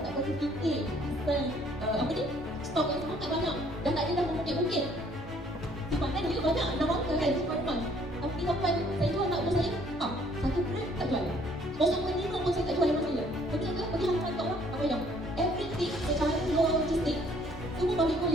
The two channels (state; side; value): normal; both; correlation 0.61